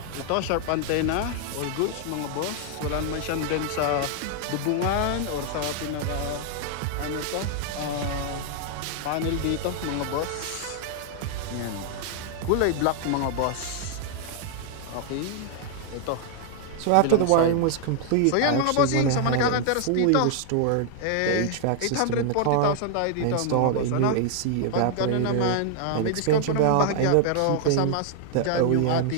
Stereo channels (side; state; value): both; different; correlation 0.00